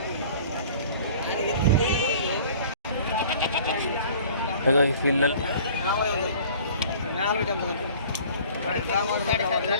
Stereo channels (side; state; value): both; inverted; correlation -0.48